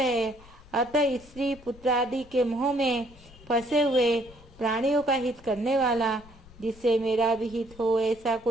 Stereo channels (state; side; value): noise; left; rumble, 22 dB below the sound